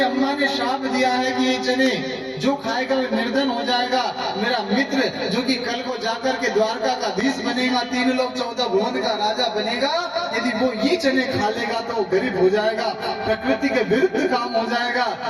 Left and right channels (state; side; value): identical; both; correlation 1.00